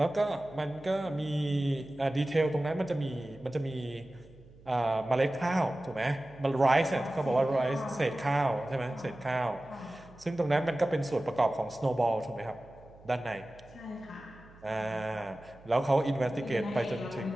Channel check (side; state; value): right; noise; hum, 23 dB below the sound